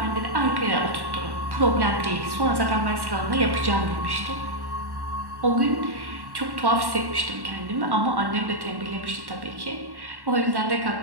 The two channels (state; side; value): late; left; 1.1 ms